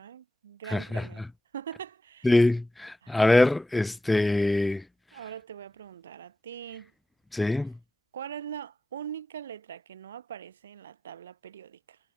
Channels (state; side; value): normal; both; correlation 0.94